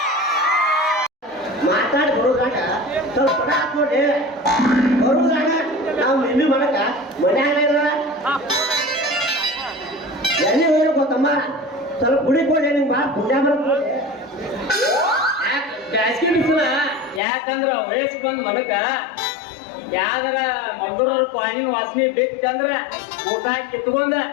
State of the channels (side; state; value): right; drops out; at 17.2 s